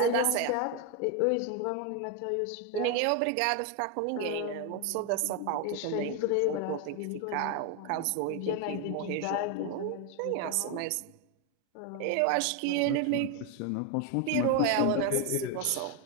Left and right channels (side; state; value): both; different; correlation 0.01